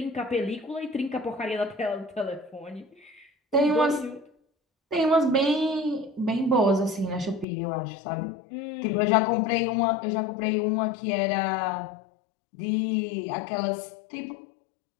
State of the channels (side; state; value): right; drops out; at 7.5 s